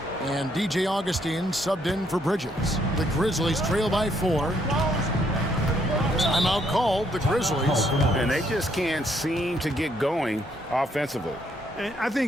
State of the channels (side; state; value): both; normal; correlation 0.71